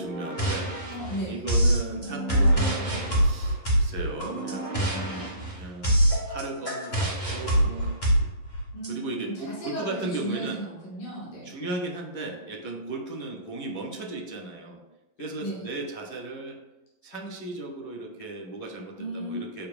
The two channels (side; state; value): right; late; 11 ms